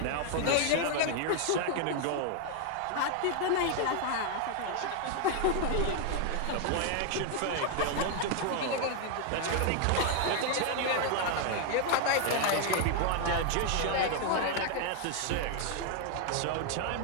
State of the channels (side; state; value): both; different; correlation 0.00